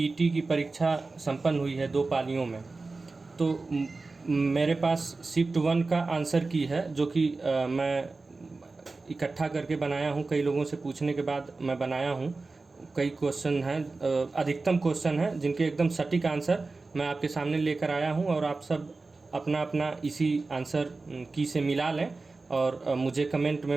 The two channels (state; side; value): quieter; left; 3.7 dB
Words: की परीक्षा संपन्न हुई है 2 पालियों में। तो मेरे पास शिफ्ट 1 का आंसर की है, जो कि मैं इकट्ठा करके बनाया हूँ। कई लोगों से पूछने के बाद मैं बनाया हूँ। कई क्वेश्चन हैं, अधिकतम क्वेश्चन हैं जिनके एकदम सटीक आंसर मैं आपके सामने लेकर आया हूँ। और आप सब अपना अपना इसी आंसर की से मिला लें और मुझे कमेंट